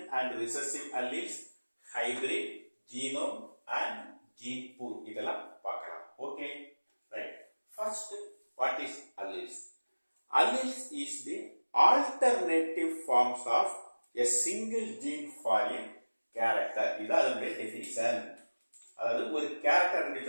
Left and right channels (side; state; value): both; inverted; correlation -1.00